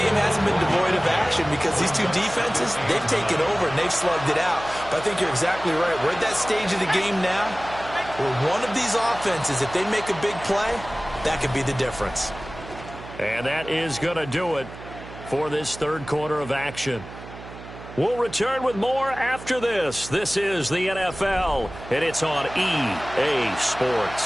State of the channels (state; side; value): noise; right; hum, 14 dB below the sound